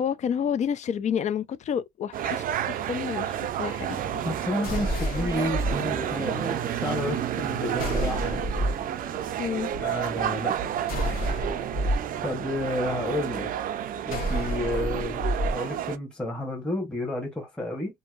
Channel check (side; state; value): both; normal; correlation 0.47